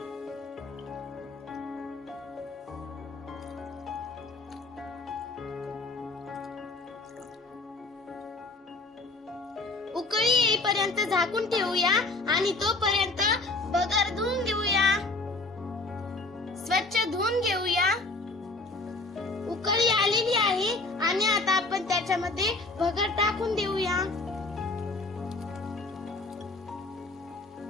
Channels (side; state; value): right; quieter; 3.3 dB